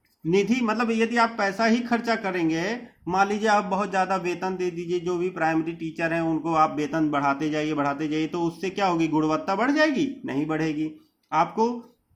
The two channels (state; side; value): identical; both; correlation 1.00